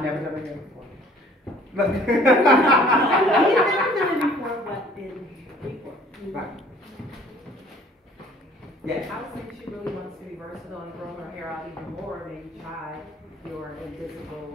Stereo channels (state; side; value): normal; both; correlation 0.54